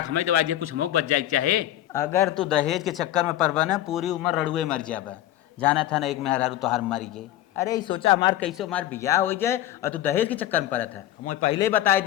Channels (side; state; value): right; quieter; 13.3 dB